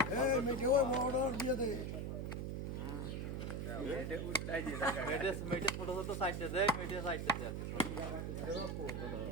এই মেটে ওই বড় দিয়ে দে এটা উল্টাই দিয়ে দেখা মেটে ছোট ছোট সাইডে দে মেটে সাইডে দে আছে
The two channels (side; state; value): right; noise; hum, 3 dB below the sound